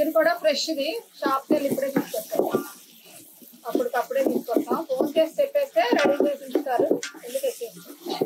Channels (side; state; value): both; identical; correlation 1.00